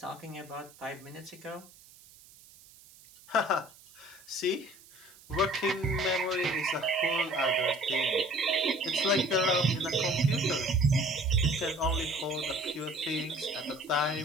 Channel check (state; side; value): noise; right; hiss, 23 dB below the sound